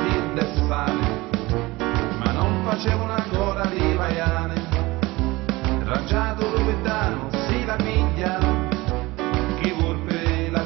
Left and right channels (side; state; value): left; quieter; 21.2 dB